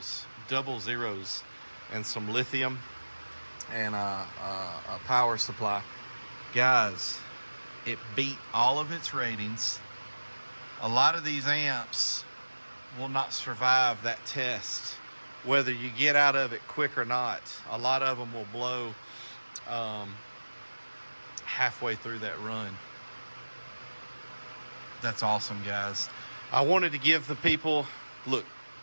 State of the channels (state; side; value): inverted; both; correlation -1.00